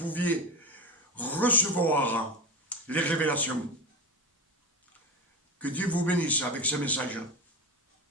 recevoir les révélations. Que Dieu vous bénisse avec ce message.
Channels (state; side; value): normal; both; correlation 0.22